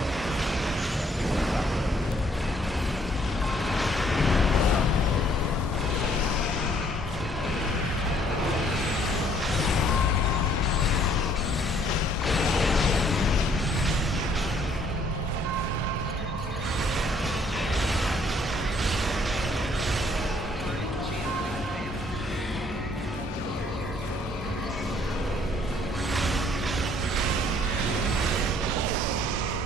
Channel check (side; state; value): both; normal; correlation 0.63